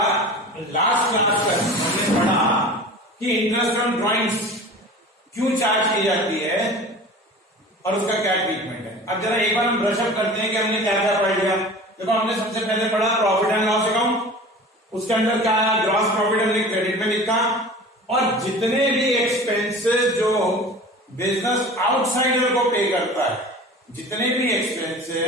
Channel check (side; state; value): both; normal; correlation 0.39